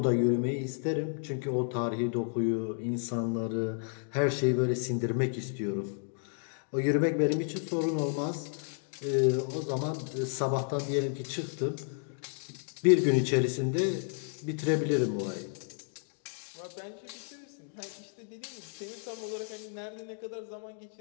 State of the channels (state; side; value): silent; right; 56 dB below the other